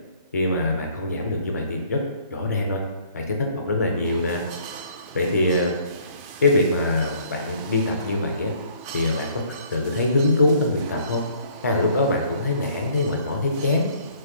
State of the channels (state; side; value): inverted; both; correlation -0.60